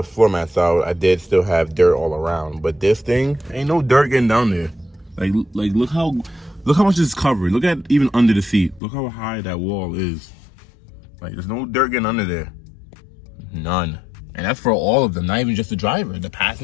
floor mats out, I did still have dirt all around. But this thing, ain't no dirt getting down there. Like look how much is covered. Look at even under the seat. Look how high that wall is. Like, there's no dirt getting under there. None. And that's for all of them, not even just the driver, the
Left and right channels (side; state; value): right; drops out; at 8.8 s